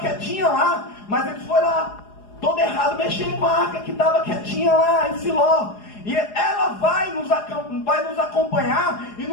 lá, mas eles foram lá todo errado, mexendo com a arca que estava quietinha lá em Siló. E ela vai nos acompanhar e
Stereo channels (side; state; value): right; late; 4.8 ms